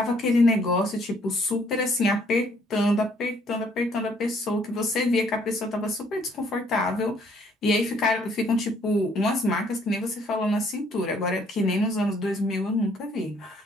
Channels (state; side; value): normal; both; correlation 0.64